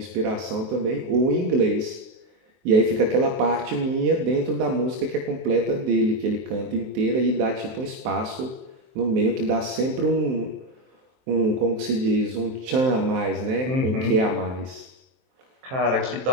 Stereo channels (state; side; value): late; left; 23 ms